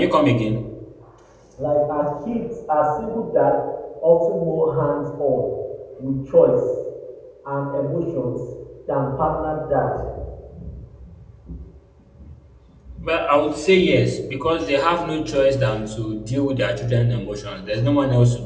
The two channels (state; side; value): identical; both; correlation 1.00